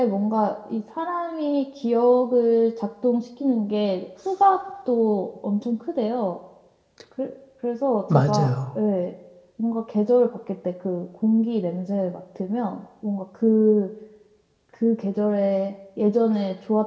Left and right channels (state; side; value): identical; both; correlation 1.00